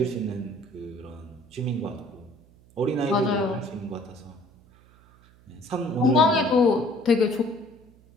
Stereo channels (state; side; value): noise; right; hum, 27 dB below the sound